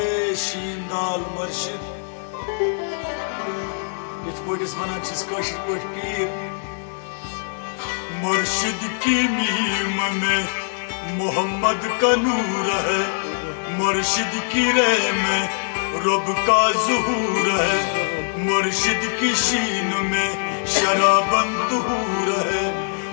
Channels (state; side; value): silent; right; digital silence